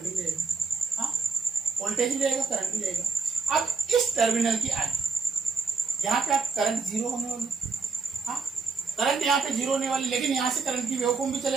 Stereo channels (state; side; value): quieter; left; 4.6 dB